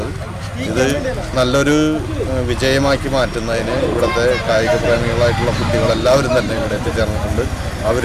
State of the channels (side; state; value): both; identical; correlation 1.00